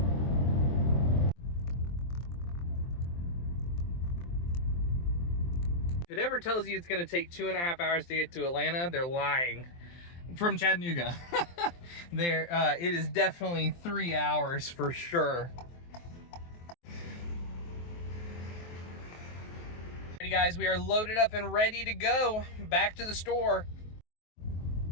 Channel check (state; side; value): late; right; 23 ms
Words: If it ever tells you it's going to take 2.5 hours to get to Atlanta, they're lying. From Chattanooga. It is definitely 3 hours for sure. Alrighty guys, we are loaded up and ready to go back to the store.